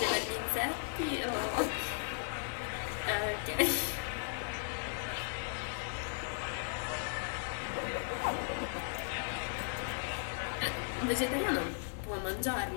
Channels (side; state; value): right; silent; digital silence